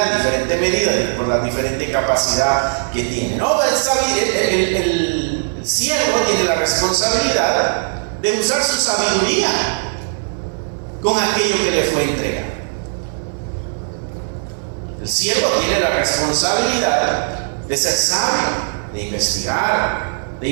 en diferente medida, por la diferente capacidad que tiene, ¿no? El siervo tiene la responsabilidad de usar su sabiduría con aquello que le fue entregado. El siervo tiene la responsabilidad de ser sabio, de investigar, de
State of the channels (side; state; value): left; silent; 58 dB below the other